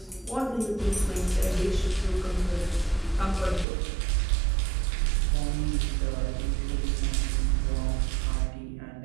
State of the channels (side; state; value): left; drops out; at 3.7 s